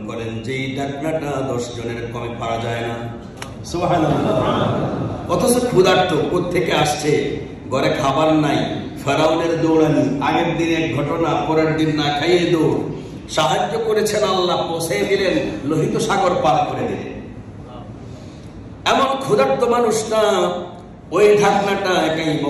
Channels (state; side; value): identical; both; correlation 1.00